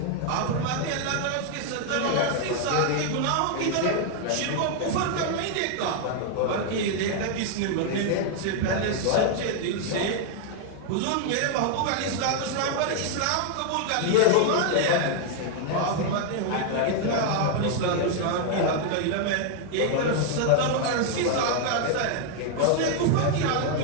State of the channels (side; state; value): both; different; correlation 0.00